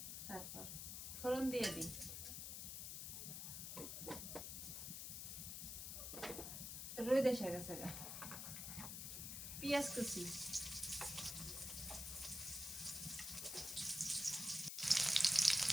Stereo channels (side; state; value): left; noise; hiss, 5 dB below the sound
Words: তারপর ফোড়ন দিয়ে দিই রই দেশে গেছে গা পেঁয়াজ কুচি